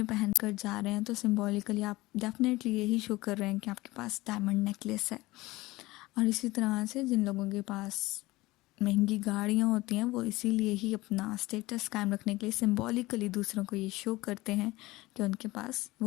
पहन कर जा रहे हैं तो सिम्बॉलिकली आप डेफिनेटली यही शो कर रहे हैं कि आपके पास डायमंड नेकलेस है. और इसी तरह से जिन लोगों के पास महंगी गाड़ियाँ होती हैं वो इसीलिए ही अपना स्टेटस कायम रखने के लिए सिम्बॉलिकली दूसरों को ये शो करते हैं कि उनके पास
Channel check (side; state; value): right; quieter; 19.8 dB